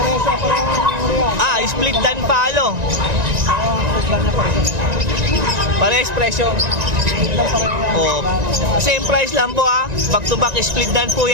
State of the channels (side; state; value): left; late; 1.9 ms